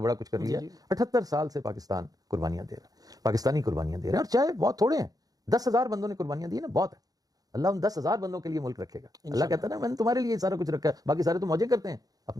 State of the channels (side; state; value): left; late; 0.18 ms